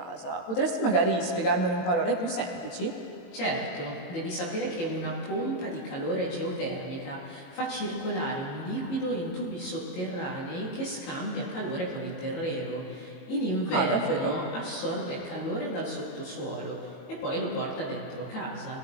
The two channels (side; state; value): right; late; 22 ms